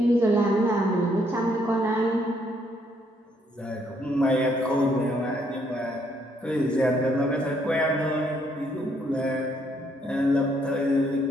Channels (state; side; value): normal; both; correlation 0.70